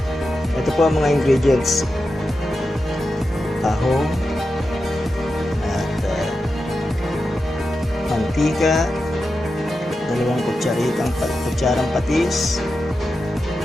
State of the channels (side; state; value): both; normal; correlation 0.90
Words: Ito po ang mga ingredients: tahong at mantika, 2 kutsarang patis,